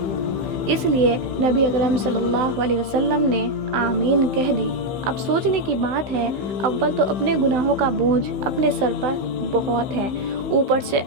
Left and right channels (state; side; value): late; left; 15 ms